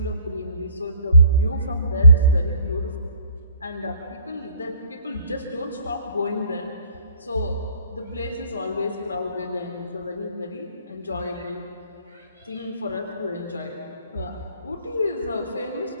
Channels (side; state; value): both; inverted; correlation -0.58